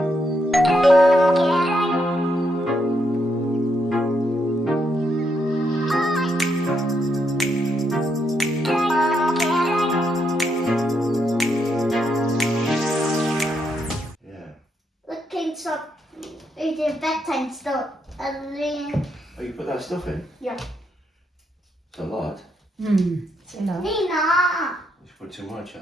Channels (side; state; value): both; normal; correlation 0.78